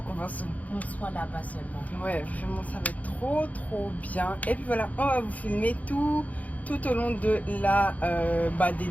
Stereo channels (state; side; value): late; right; 0.074 ms